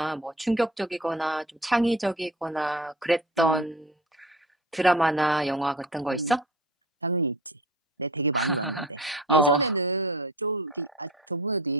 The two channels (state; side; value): normal; both; correlation 0.38